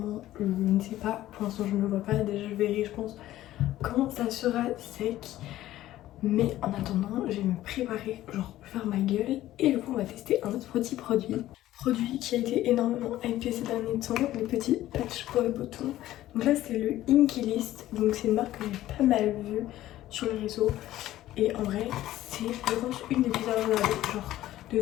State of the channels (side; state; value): right; quieter; 14.4 dB